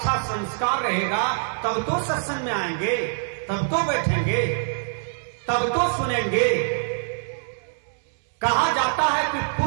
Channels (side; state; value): left; silent; digital silence